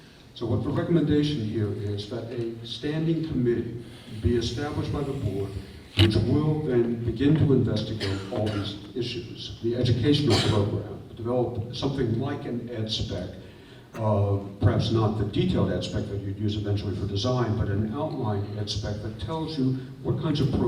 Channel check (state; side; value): identical; both; correlation 1.00